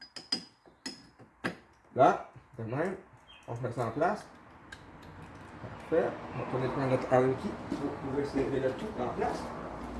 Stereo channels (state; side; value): identical; both; correlation 1.00